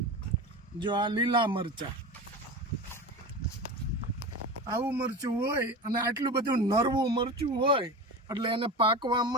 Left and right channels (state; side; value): normal; both; correlation 0.28